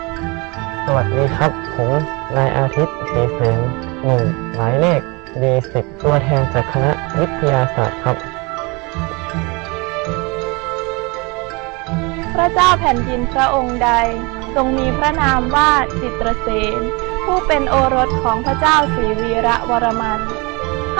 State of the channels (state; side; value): quieter; left; 27.7 dB